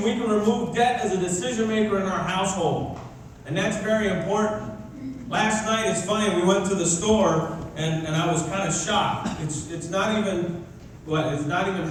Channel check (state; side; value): identical; both; correlation 1.00